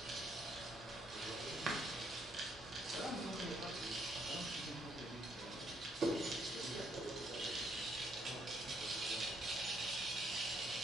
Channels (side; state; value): both; normal; correlation 0.71